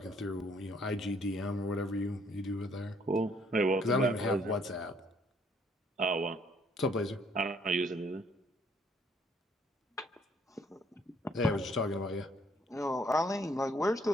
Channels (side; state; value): both; normal; correlation 0.65